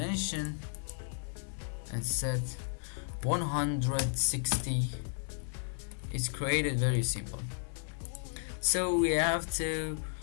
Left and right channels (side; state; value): right; silent; digital silence